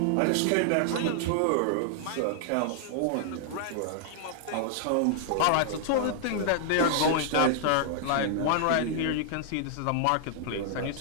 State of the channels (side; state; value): both; different; correlation -0.01